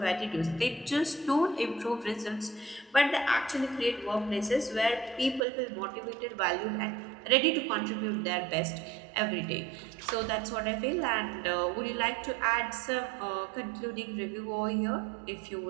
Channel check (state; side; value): drops out; left; at 5.4 s